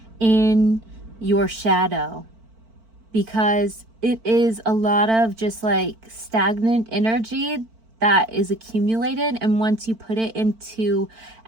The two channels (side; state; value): left; late; 4.5 ms